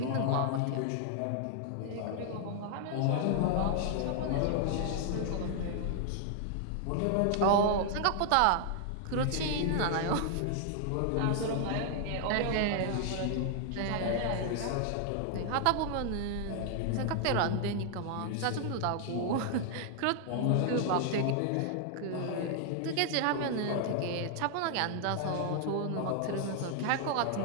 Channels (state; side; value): different; both; correlation 0.00